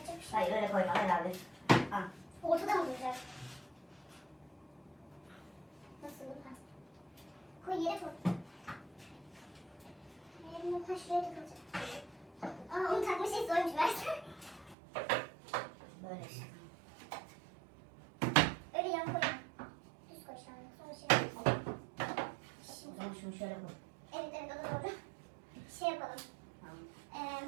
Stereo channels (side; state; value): left; drops out; at 14.8 s